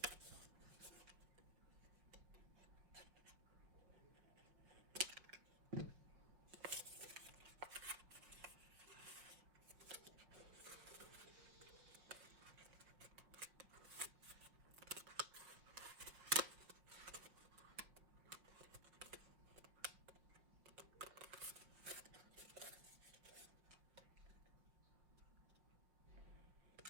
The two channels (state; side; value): late; left; 5.4 ms